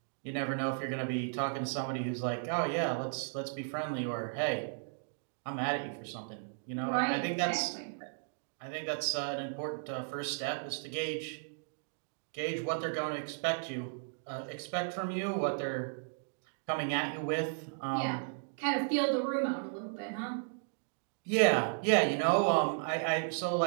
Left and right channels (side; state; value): left; silent; digital silence